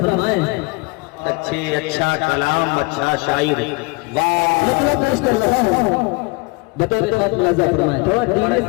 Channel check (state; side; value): quieter; right; 26.5 dB